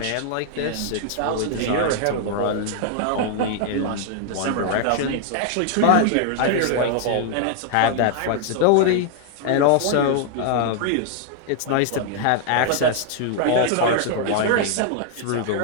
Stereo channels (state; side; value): different; both; correlation 0.00